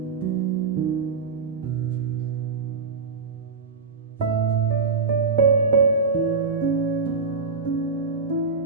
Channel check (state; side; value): quieter; left; 4.6 dB